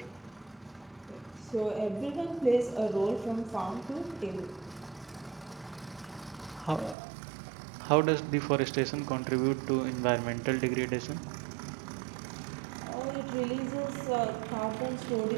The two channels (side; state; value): left; drops out; at 7.0 s